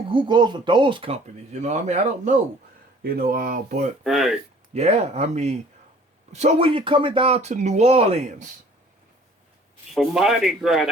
goes with those companies? I mean, I don't know. But yeah, I mean, so when you're coming down to New Orleans. For Mardi Gras,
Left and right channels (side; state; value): both; normal; correlation 0.52